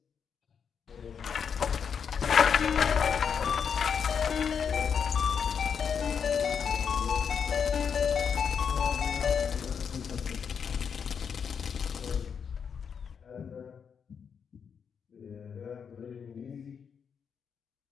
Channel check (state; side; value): quieter; right; 6.9 dB